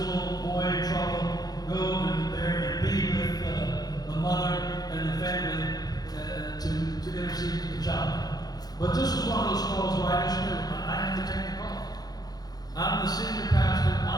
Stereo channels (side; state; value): right; late; 0.19 ms